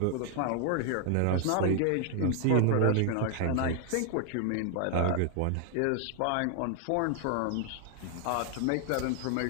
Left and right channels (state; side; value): different; both; correlation 0.00